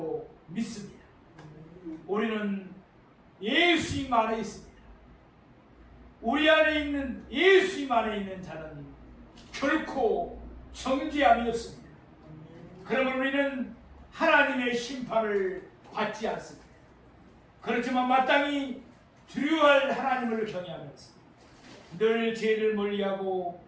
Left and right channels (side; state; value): both; identical; correlation 1.00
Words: 믿습니다. 우리는 예수님 안에 있습니다. 우리 안에 있는 예수님 안에 있는 자는 결코 정죄함이 없습니다. 그러면 우리는 하나님의 심판을 받지 않습니다. 그렇지만 마땅히 두려워할 하나님을 경외하면서 늘 죄를 멀리하고